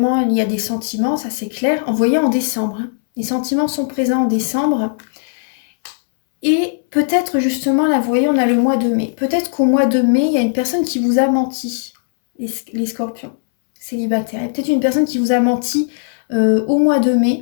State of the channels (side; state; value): right; silent; 67 dB below the other